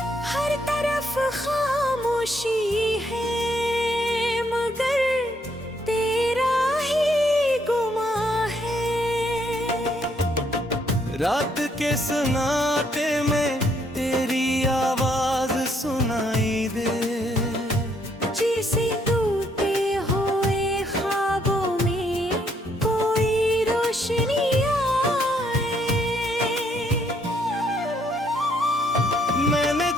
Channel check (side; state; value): both; normal; correlation 0.71